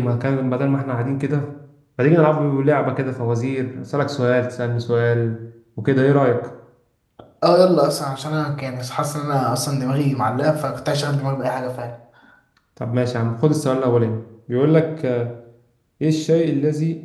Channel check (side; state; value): both; identical; correlation 1.00